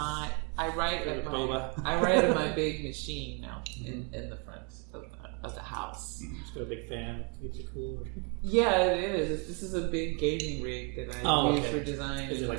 I write at Boba. I write at my big machine now in the front of the house. Just got a big fan. Keeps it cool. Yeah, it is. This is a big gauging rig that I use for design. Is it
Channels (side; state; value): left; quieter; 32.9 dB